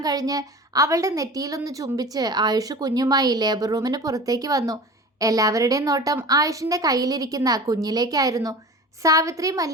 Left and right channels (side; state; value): both; normal; correlation 0.36